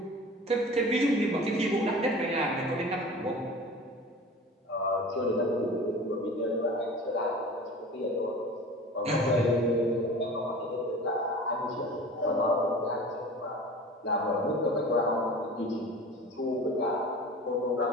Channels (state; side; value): normal; both; correlation 0.38